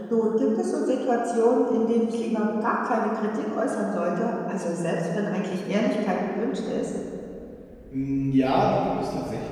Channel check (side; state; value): both; identical; correlation 1.00